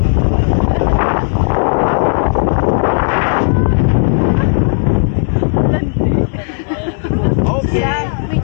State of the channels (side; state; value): right; silent; digital silence